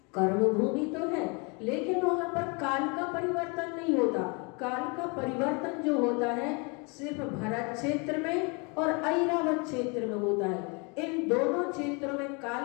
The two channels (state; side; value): quieter; right; 31.8 dB